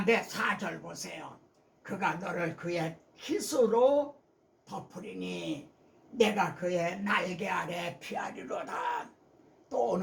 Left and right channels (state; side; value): identical; both; correlation 1.00